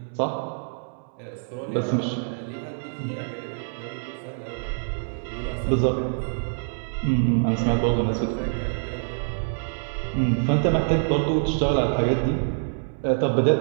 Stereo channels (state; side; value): silent; left; 61 dB below the other